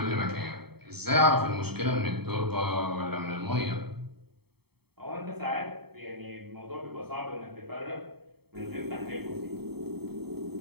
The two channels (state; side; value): late; left; 0.96 ms